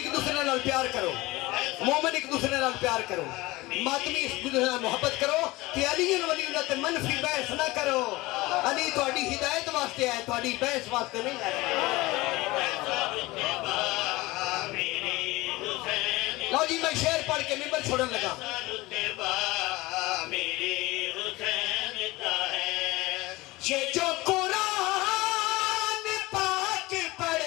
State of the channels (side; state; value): right; quieter; 20.6 dB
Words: دوسرے نال پیار کرو مومن ایک دوسرے نال پیار کرو ماتمی ایک دوسرے نال محبت کرو کہ علی ولی اللہ تے منفی بحث نہ کرو علی تہاڈی ہدایت واسطے ہے تہاڈی بحث واسطے نہیں ہے لو جی میں شعر پڑھ کے ممبر چھوڑن لگا یہ جو